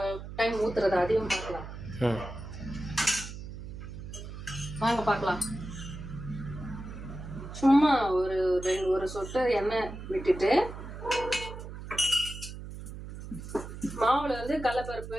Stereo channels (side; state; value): right; noise; hum, 10 dB below the sound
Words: டைம் ஊத்துறத அதையும் பார்க்கலாம். வாங்க பார்க்கலாம். சும்மா ஒரு சொட்டு எண்ணெய் விட்டுட்டு மாவுல வந்து கடலைப்பருப்பு